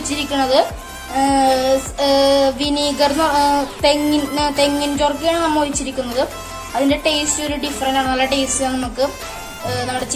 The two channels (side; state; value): both; identical; correlation 1.00